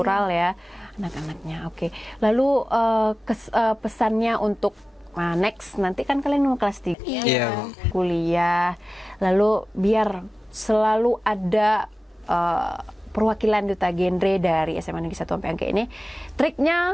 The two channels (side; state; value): both; normal; correlation 0.96